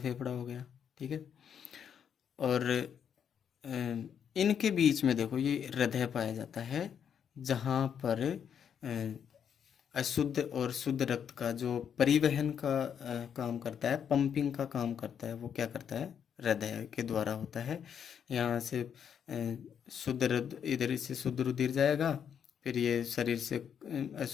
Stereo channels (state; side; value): quieter; right; 8.0 dB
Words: हो गया, ठीक है। और इनके बीच में देखो ये हृदय पाया जाता है, जहाँ पर अशुद्ध और शुद्ध रक्त का जो परिवहन का काम करता है, पंपिंग का काम करता है, वो क्या करता है? हृदय के द्वारा होता है। यहाँ से शुद्ध इधर से शुद्ध रुधिर जाएगा, फिर ये शरीर से